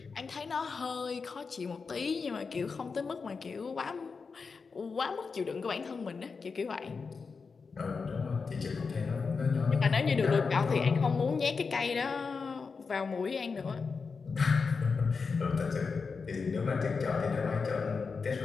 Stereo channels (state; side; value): quieter; right; 5.0 dB